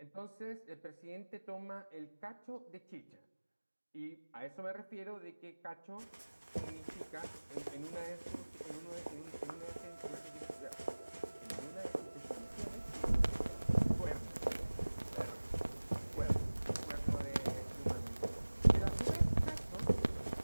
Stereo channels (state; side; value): inverted; both; correlation -1.00